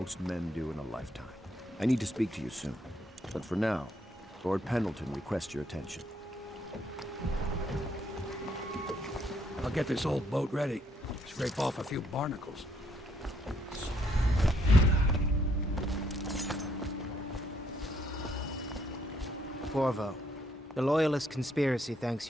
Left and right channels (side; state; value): both; normal; correlation 0.71